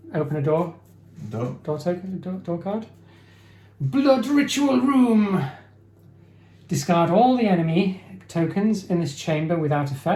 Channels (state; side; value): identical; both; correlation 1.00